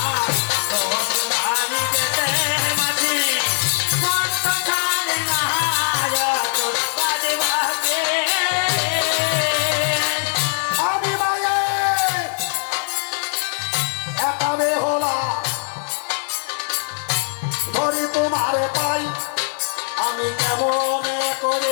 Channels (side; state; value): right; silent; digital silence